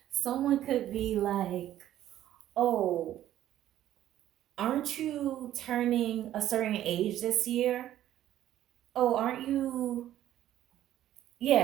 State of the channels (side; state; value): left; quieter; 12.5 dB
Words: Someone could be like, oh, aren't you turning a certain age this year? Oh, aren't you?